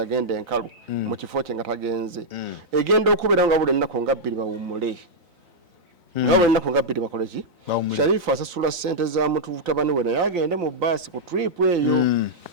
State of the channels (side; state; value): left; late; 3.9 ms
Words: enkalu mu kifo kye nga tagenze egenda okubeera nga buli ennaku nga bbiri bawummule nga buli ennaku nga bbiri bakole ki Sharifa asasula ssente za mutabani we naye agende mu basi ku trip eyo